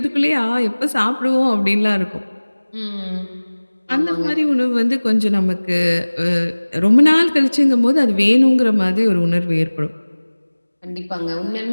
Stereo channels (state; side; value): inverted; both; correlation -1.00